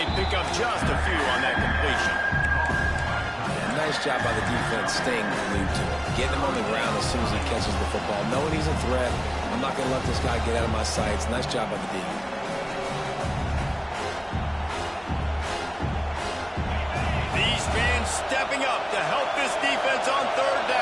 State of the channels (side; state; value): both; identical; correlation 1.00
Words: pick up just a few on that completion. Yeah, nice job by the defense staying glued to it. Getting him on the ground as soon as he catches the football. Knowing he's a threat. I'm not going to let this guy get out of my sights. Nice job by the defense. These fans stepping up to help this defense on third